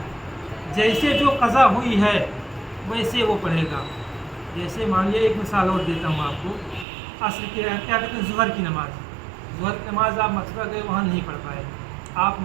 जैसे जो कज़ा हुई है वैसे वो पढ़ेगा। जैसे मान लिया, एक मिसाल और देता हूँ आपको, असर के क्या कहते हैं ज़ुहर की नमाज़, ज़ुहर की नमाज़ आप मथुरा गए वहाँ नहीं पढ़ पाए, आप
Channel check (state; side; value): drops out; left; at 6.9 s